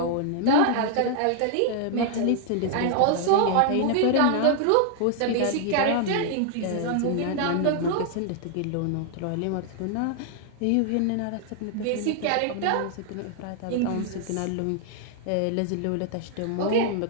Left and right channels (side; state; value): both; different; correlation 0.00